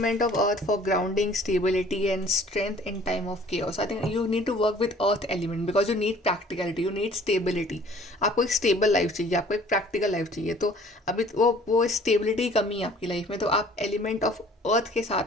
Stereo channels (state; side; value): normal; both; correlation 0.53